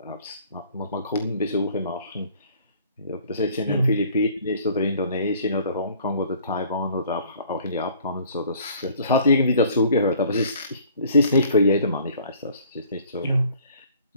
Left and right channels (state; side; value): inverted; both; correlation -0.55